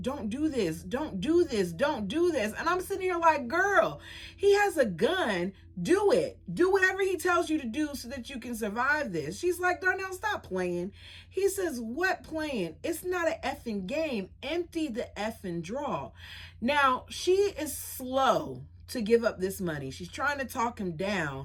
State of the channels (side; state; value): both; identical; correlation 1.00